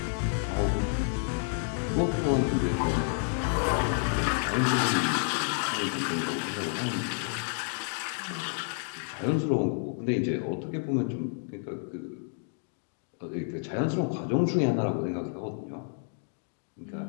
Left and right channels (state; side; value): silent; right; 58 dB below the other